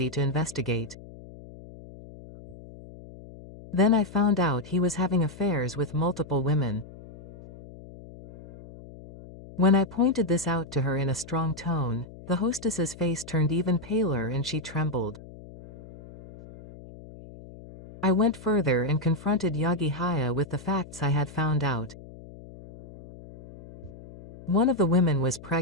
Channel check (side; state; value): left; noise; hum, 17 dB below the sound